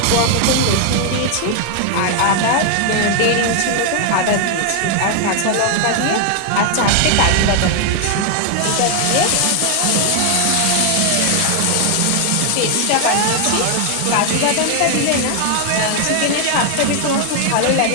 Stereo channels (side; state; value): both; different; correlation 0.00